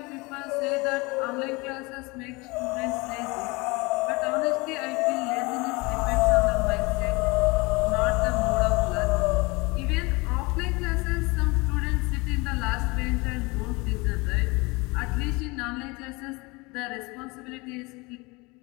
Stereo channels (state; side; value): quieter; right; 25.6 dB